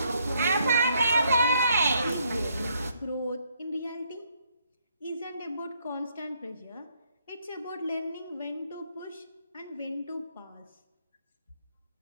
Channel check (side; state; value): both; inverted; correlation -0.71